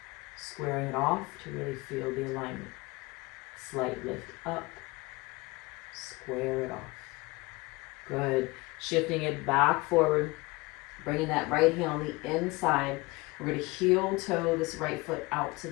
squaring it off to really feel the alignment. Slight lift up, square it off. Good. Shifting it back forward, bringing that right hand on the inside. We're going to heel toe this right foot out to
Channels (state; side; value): quieter; right; 23.3 dB